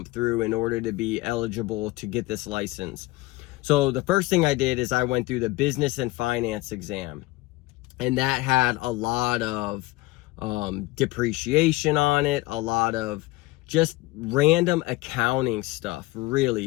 through in order to be eligible to get this license. So the first thing I did is I went through the business and finance exam. And that had a lot of depreciation on it, a lot of just random accounting stuff, really.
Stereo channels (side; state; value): right; quieter; 20.2 dB